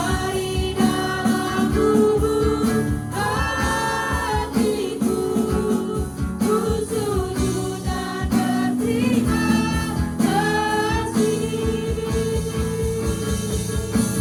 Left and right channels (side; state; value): both; identical; correlation 1.00